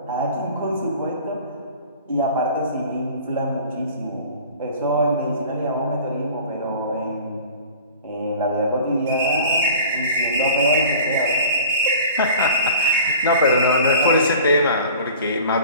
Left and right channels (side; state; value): both; inverted; correlation -0.43